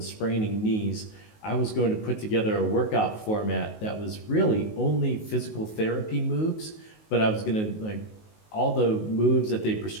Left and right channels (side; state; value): right; late; 19 ms